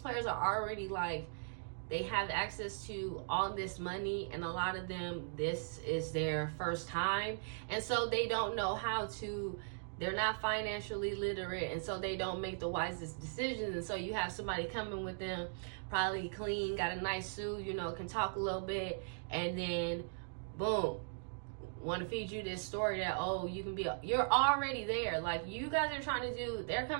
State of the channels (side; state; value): left; silent; digital silence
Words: are already like, they have access to all this money, and a lot of them, this is their first time, and so they don't know how to, they're not financially literate, and so they don't make the wisest decisions. And so you have somebody coming with them, probably clean, got a nice suit, you know, can talk a little bit, and then boom, want to feed you this story that, oh, you can be, you're already there. Like, you guys are trying to do, they're